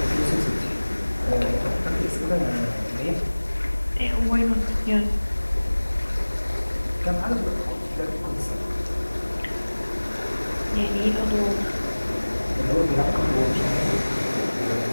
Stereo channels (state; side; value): inverted; both; correlation -1.00